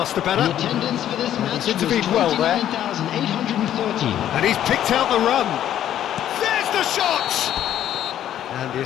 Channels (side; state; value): right; quieter; 11.2 dB